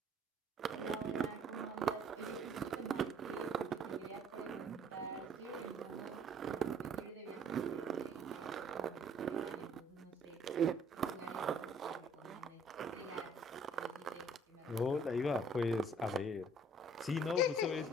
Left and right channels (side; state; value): both; normal; correlation 0.58